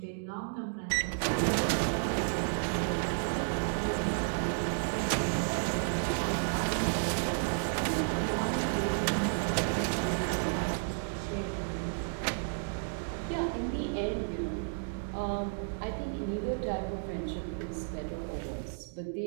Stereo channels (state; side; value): silent; left; digital silence